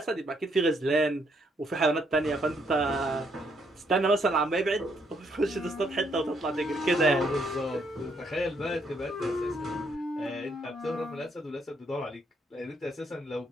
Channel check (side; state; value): both; normal; correlation 0.72